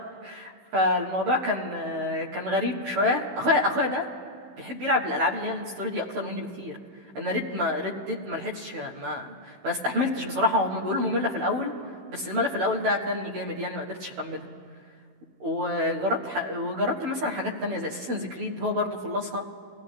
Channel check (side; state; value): left; late; 16 ms